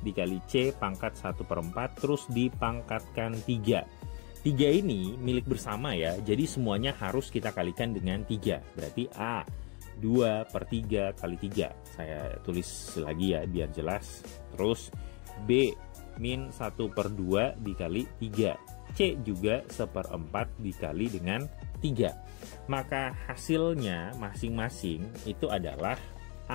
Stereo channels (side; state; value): right; quieter; 32.5 dB